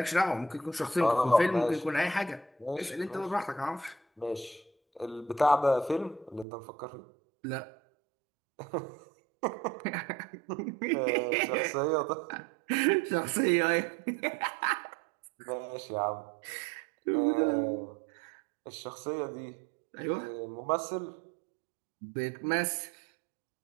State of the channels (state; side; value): drops out; left; at 6.5 s